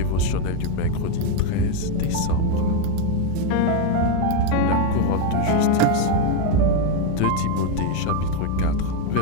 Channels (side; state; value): both; different; correlation 0.02